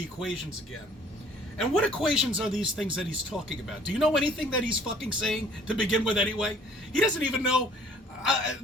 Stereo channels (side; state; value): both; normal; correlation 0.56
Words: equations again. And what equations are these things that he's talking about? Do you know anything that he's fucking saying to begin with anyway? He doesn't even know